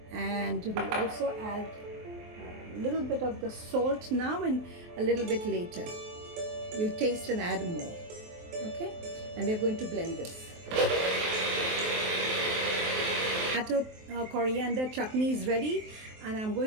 and we also add a little bit of the salt now and a little bit later. We'll taste and add more. Okay, and we're going to blend this. Tomato coriander chutney is ready, and I'm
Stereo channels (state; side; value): late; left; 23 ms